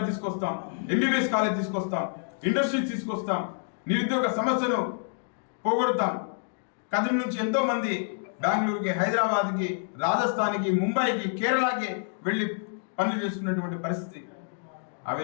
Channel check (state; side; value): silent; right; digital silence